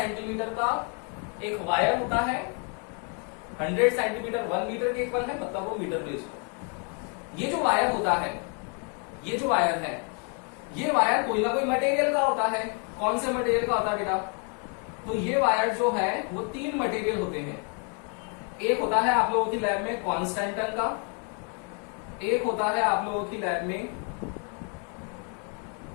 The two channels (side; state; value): right; quieter; 38.8 dB